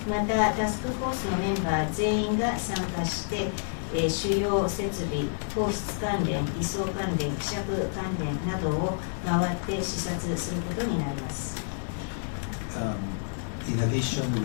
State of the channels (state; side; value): silent; right; digital silence